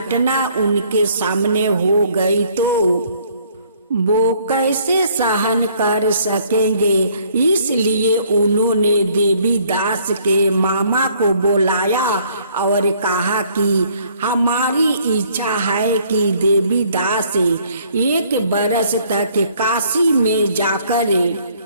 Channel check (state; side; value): inverted; both; correlation -0.62